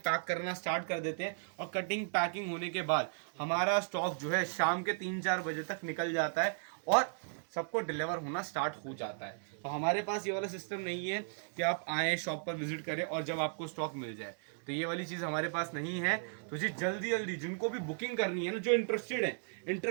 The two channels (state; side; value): silent; left; digital silence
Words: करना स्टार्ट कर देते हैं, और कटिंग पैकिंग होने के बाद हमारा स्टॉक जो है शाम के 3-4 बजे तक निकल जाता है और सबको डिलीवर होना स्टार्ट हो जाता है। तो हमारे पास ये वाला सिस्टम नहीं है कि आप आए शॉप पर विजिट करें और जब आपको स्टॉक मिल जाए, तो ये वाली चीज़ हमारे पास नहीं है। तो जी जल्दी जल्दी जिनको भी बुकिंग करनी है ना, जो इंटरेस्टेड है,